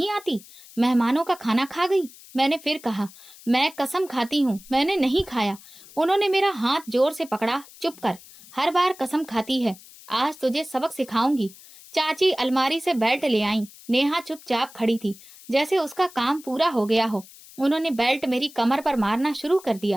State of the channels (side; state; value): left; noise; hiss, 21 dB below the sound